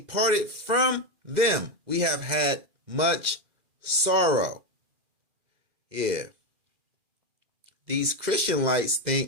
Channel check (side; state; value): left; late; 2.0 ms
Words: from them, we have had much sorrow. Yeah. These Christianlites